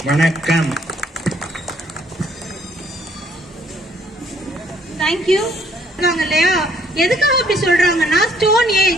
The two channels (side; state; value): both; normal; correlation 0.65